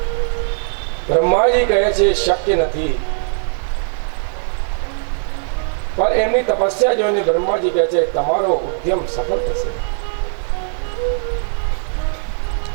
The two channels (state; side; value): silent; left; 67 dB below the other